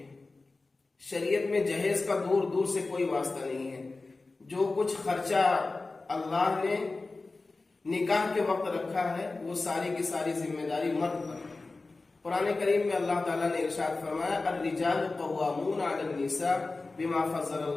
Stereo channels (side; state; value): right; quieter; 3.5 dB